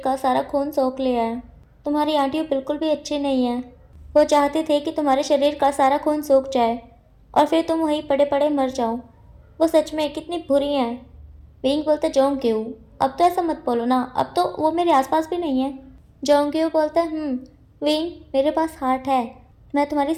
का सारा खून सोख लिया है, तुम्हारी आंटियों बिल्कुल भी अच्छी नहीं है, वो चाहते थे कि तुम्हारे शरीर का सारा खून सूख जाए और फिर तुम वहीं पड़े पड़े मर जाओ, वो सच में कितनी बुरी हैं। विंग बोलता है जोंग्यू अब तो ऐसा मत बोलो ना, अब तो वो मेरे आसपास भी नहीं है। जोंग्यू बोलता है विंग मेरे पास हार्ट है, मैं तुम्हारी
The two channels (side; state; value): both; identical; correlation 1.00